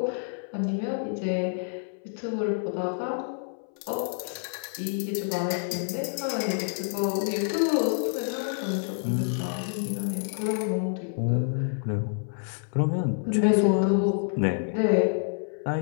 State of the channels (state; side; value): silent; right; 59 dB below the other